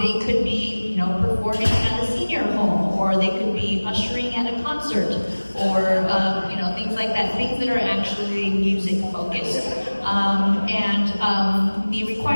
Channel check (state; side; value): inverted; both; correlation -1.00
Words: could be, you know, performing at a senior home, or they could be ushering at a concert, or you know, things like that, things that are actually music focused. The